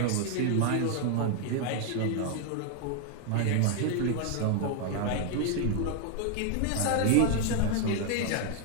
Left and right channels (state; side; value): different; both; correlation 0.00